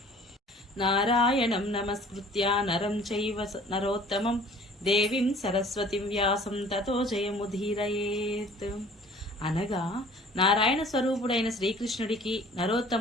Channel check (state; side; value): normal; both; correlation 0.51